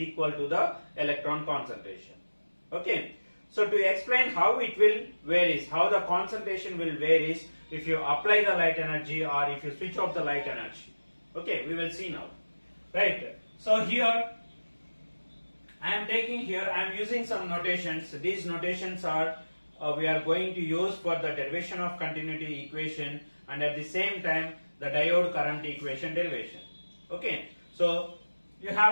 to the electron concentration. Okay, so to explain how it will varies, how the concentration will varies if you apply the light energy or if you switch off the light energy. Okay, we will see now. Right, so here I am using some notations. These notations are we are going to use for the derivation of continuity equation and at the same time the diode current equation derivation. Okay, so you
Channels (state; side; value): inverted; both; correlation -1.00